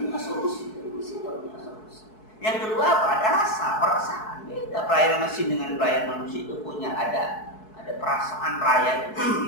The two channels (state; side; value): late; right; 4.6 ms